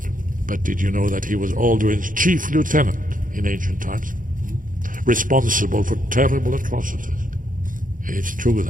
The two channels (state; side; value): late; left; 0.39 ms